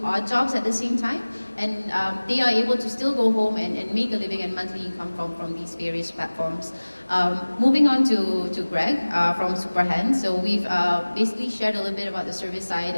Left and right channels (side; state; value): both; inverted; correlation -1.00